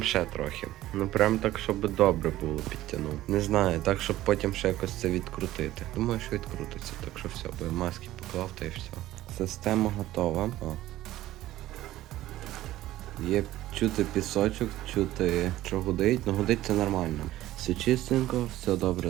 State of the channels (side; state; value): left; quieter; 15.0 dB